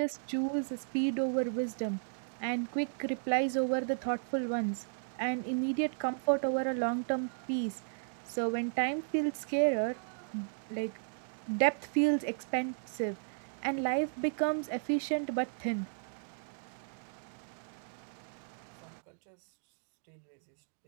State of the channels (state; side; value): silent; left; digital silence